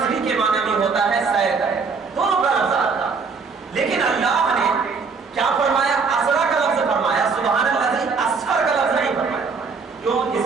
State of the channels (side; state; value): left; quieter; 5.0 dB